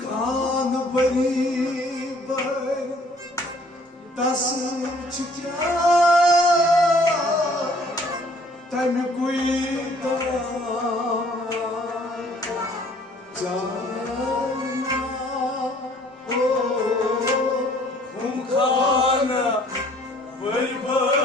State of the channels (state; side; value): normal; both; correlation 0.58